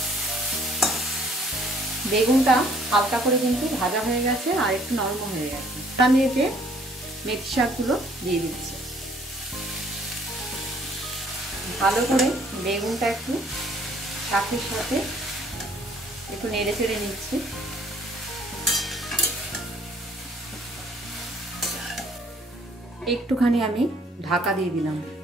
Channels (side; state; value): both; normal; correlation 0.61